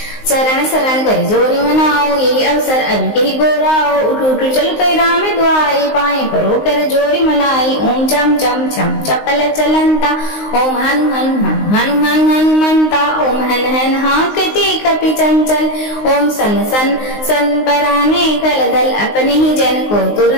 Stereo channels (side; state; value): right; late; 19 ms